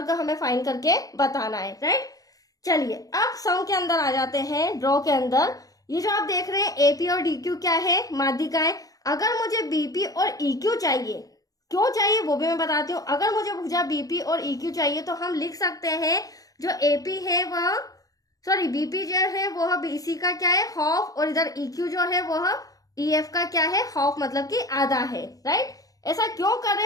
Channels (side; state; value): right; late; 0.17 ms